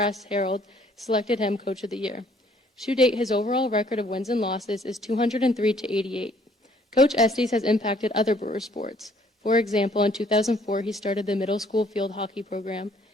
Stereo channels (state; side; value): normal; both; correlation 0.62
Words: Herald selected him Coach of the Year. To date, his overall record of wins and losses is 203-88. Coach Estes has impacted other Brewer sports. For example, in 2004, he started the middle school field hockey program.